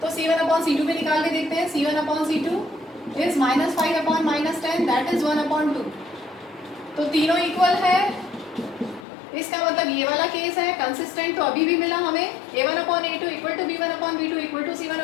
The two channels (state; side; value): drops out; right; at 9.1 s